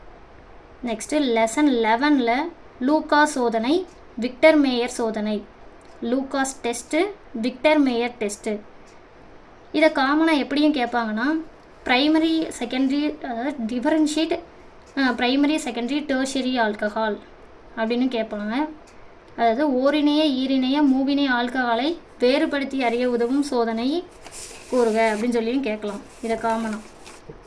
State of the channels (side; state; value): both; identical; correlation 1.00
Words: நெக்ஸ்ட்டு லெசன் 11ல் லூகாஸ் சோதனை, விக்டர் மேயர் சோதனை, Lucas test, Victor Meyer test. இதை காமனாக எப்படியும் கேட்பாங்கன்னா ப்ரைமரி செகண்டரி, அதாவது differentiate primary secondary tertiary alcohol அப்படின்னு கேட்பாங்க. அதாவது ஓரிணைய ஈரிணைய மூவினை ஆல்கஹாலை வேறுபடுத்தி அறிய உதவும் சோதனை கூறுக அப்படின்னு சொல்லியும் கேட்கலாம். இதை காமனாக.